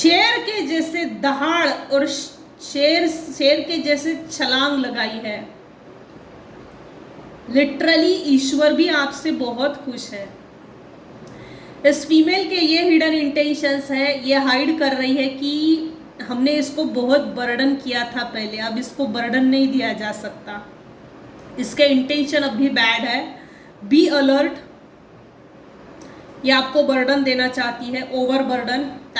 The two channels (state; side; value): identical; both; correlation 1.00